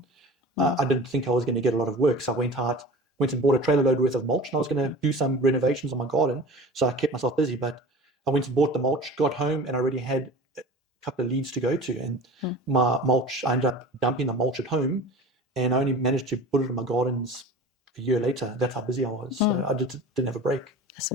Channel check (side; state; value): both; normal; correlation 0.37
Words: I didn't think I was going to get a lot of work. So I went and bought a trailer load worth of mulch, and I was going to do some renovations on my garden. So I kept myself busy, but I went and bought the mulch, got home, and I already had a couple of leads to go to. And my mulch, I ended up dumping the mulch at home, and I only managed to put it in my gardens a year later. That's how busy I was. So I didn't have a break. That's